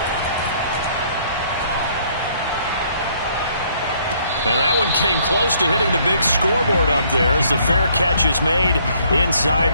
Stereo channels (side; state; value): both; inverted; correlation -0.64